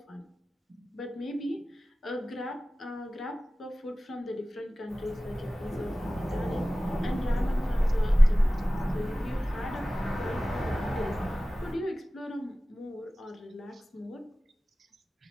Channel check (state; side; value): normal; both; correlation 0.97